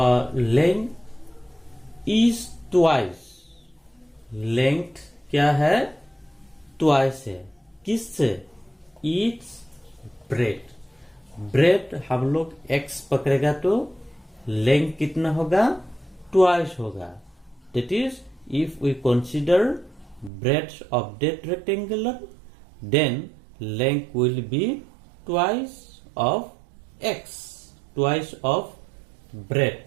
Length is twice, length क्या है? ट्वाइस है। किससे? It's bread. ब्रेड हम लोग x पकड़ेगा तो लेंथ कितना होगा? ट्वाइस होगा। That is if we consider breadth of that rectangular, then length will be twice of x, twice of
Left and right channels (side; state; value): left; drops out; at 20.3 s